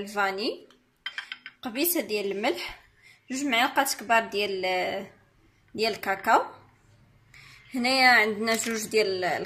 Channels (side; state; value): both; identical; correlation 1.00